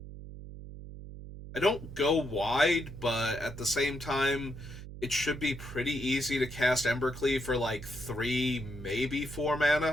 I don't go wide, but at the same time, it should be pretty easy to cast Ember Cleave for like 3, maybe 4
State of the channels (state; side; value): noise; right; hum, 12 dB below the sound